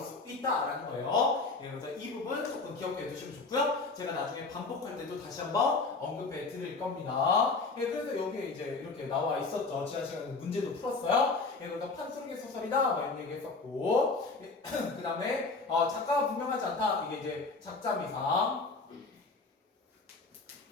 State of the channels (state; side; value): quieter; right; 3.9 dB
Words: 있다라는 거예요. 그래서 이 부분 조금 기억해 두시면 좋고요. 제가 나중에 반복할 때도 다시 한번 언급해 드릴 겁니다. 그래서 여기에 이제 이렇게 나와 있었죠. 지난 시간에 문제도 풀었어요. 그래서 판소리 소설이다 이런 얘기 했었고 그 다음에 작가가 분명하지 않다. 이게 이제 작자미상.